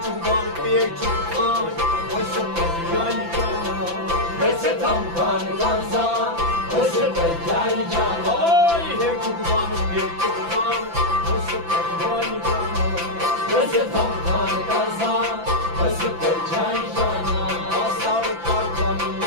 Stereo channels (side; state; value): left; late; 5.9 ms